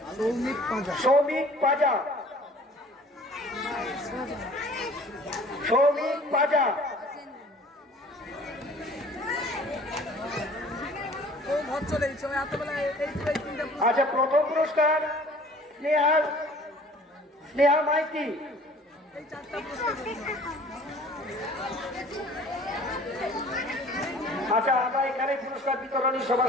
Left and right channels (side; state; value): both; normal; correlation 0.50